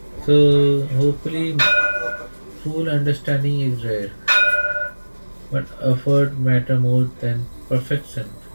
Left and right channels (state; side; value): inverted; both; correlation -1.00